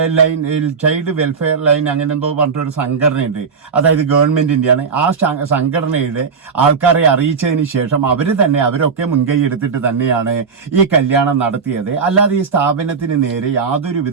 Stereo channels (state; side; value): quieter; left; 5.6 dB